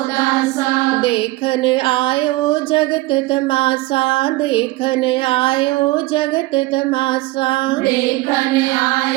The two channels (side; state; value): left; quieter; 20.0 dB